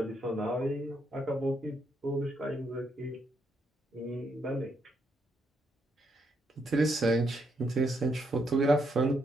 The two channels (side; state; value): both; normal; correlation 0.77